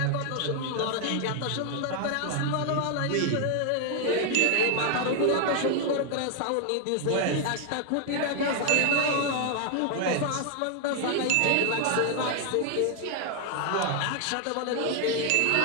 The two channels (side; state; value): both; different; correlation 0.00